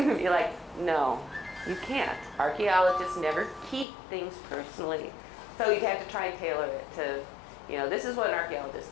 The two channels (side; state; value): right; drops out; at 3.9 s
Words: like, no, you can't. Archaeologists never keep things personally. So you'd have to try and tailor it to, this is what an archaeologist